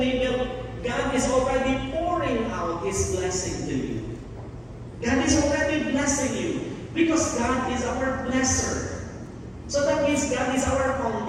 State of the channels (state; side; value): identical; both; correlation 1.00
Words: God is already pouring out His blessing to you. God is already blessing you because God is our blesser. So that means God is our